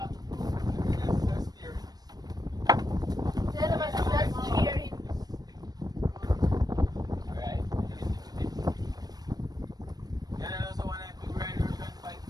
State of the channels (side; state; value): left; late; 0.19 ms